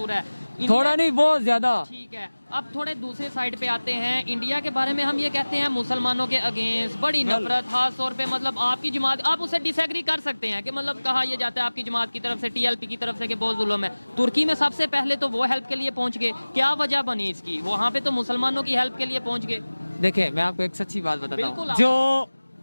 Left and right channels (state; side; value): inverted; both; correlation -1.00